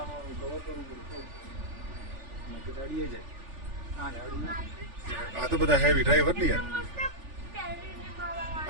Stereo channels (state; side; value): late; left; 3.4 ms